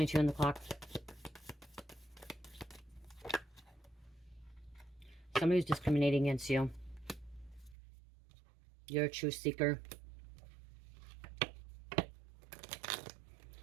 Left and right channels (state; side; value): drops out; left; at 7.8 s